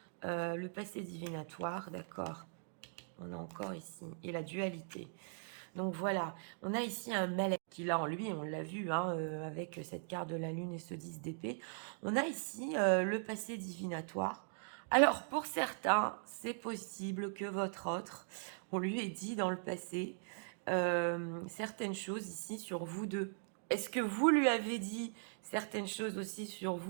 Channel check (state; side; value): silent; left; digital silence